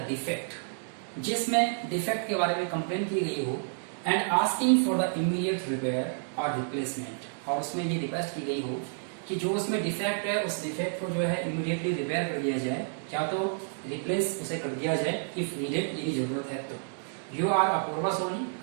डिफेक्ट, जिसमें डिफेक्ट के बारे में कंप्लेन की गई हो and asking for the immediate repair और रिप्लेसमेंट. और उसमें ये रिक्वेस्ट की गई हो कि जो उसमें डिफेक्ट है उस डिफेक्ट को जो है इमीडिएटली रिपेयर कर दिया जाए या तो रिप्लेस उसे कर दिया जाए इफ नीडेड, यदि जरूरत है तो. यू आर अपूर्वा सोनी,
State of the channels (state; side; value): silent; left; digital silence